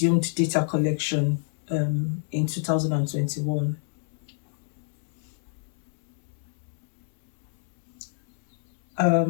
data collection in 2021.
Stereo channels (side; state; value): right; silent; 60 dB below the other